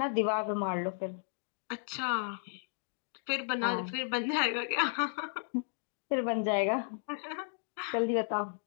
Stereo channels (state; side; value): silent; right; digital silence